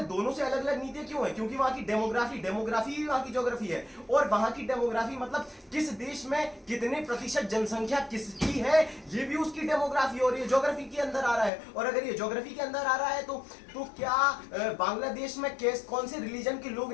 दोनों से अलग अलग नीतियां क्यों हैं? क्योंकि वहां की डेमोग्राफी वहां की ज्योग्राफी है और वहां की डेमोग्राफी मतलब किस देश में कितने प्रतिशत जनसंख्या किसकी है, ये भी उसकी डेमोग्राफी और ये ज्योग्राफी के अंदर आ रहा है। और अगर ये ज्योग्राफी के अंदर आ रहा है तो क्या बांग्लादेश में कौन से रिलीजन के लोग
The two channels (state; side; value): drops out; right; at 11.5 s